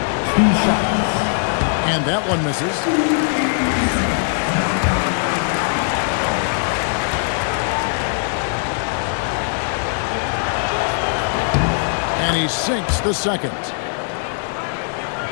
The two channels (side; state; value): right; silent; digital silence